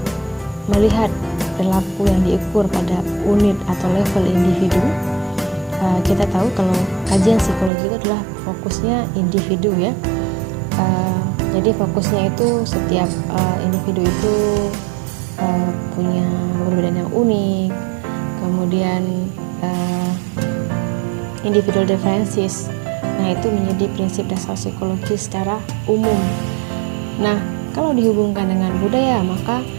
melihat perilaku yang diukur pada unit atau level individu. Kita tahu kalau kajian psikologi itu adalah fokusnya individu ya. Jadi fokusnya itu setiap individu itu punya perbedaan yang unik, kemudian individual differences. Nah, itu menjadi prinsip dasar psikologi secara umum. Nah, kalau dihubungkan dengan budaya, maka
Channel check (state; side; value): drops out; left; at 7.7 s